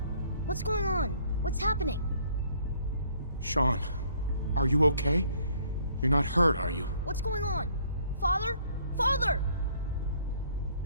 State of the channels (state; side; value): inverted; both; correlation -0.62